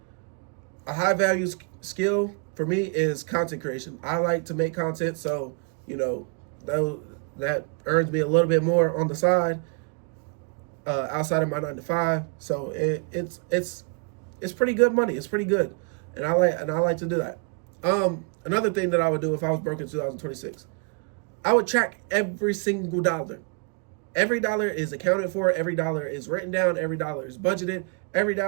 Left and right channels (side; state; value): left; quieter; 38.7 dB